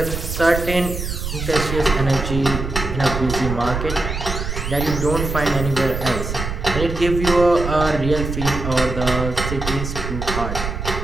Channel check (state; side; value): noise; right; rumble, 5 dB below the sound